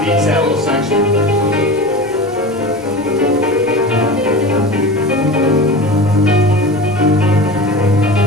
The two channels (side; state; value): both; normal; correlation 0.31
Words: that little section.